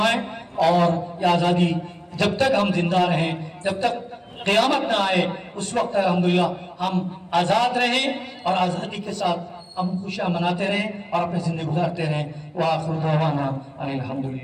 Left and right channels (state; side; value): identical; both; correlation 1.00